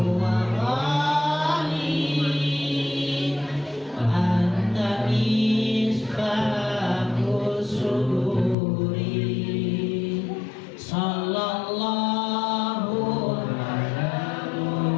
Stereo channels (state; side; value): drops out; right; at 8.6 s